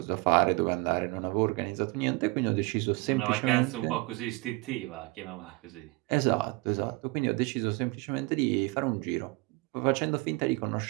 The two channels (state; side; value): quieter; left; 25.3 dB